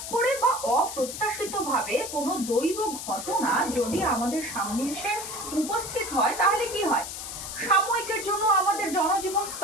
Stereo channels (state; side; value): noise; left; hiss, 8 dB below the sound